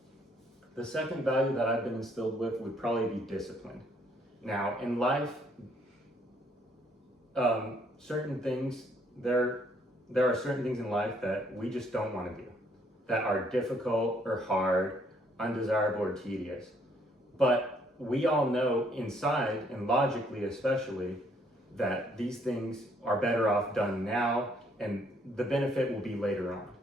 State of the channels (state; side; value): normal; both; correlation 0.67